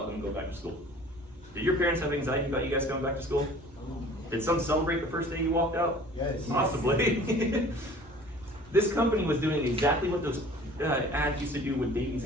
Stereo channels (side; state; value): both; normal; correlation 0.48